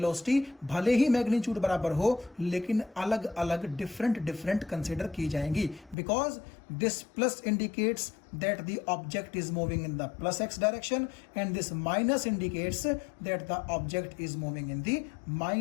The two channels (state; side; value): drops out; right; at 6.0 s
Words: भले ही मैग्नीट्यूड बराबर हो, लेकिन अलग अलग डिफरेंट कंसिडर की जाएंगी, because this plus indicates that the object is moving in the plus x direction and this minus indicates that the object is moving in the